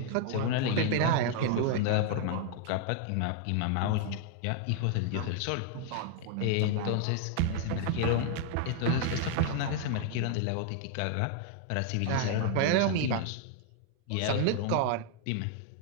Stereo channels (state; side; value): different; both; correlation 0.00